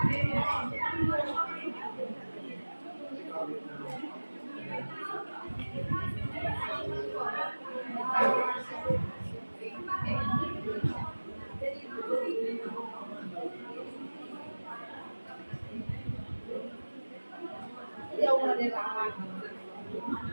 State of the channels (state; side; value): inverted; both; correlation -1.00